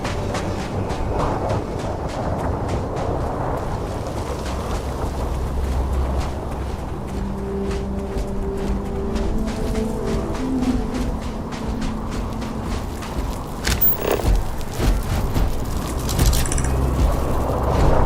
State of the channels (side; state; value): both; identical; correlation 1.00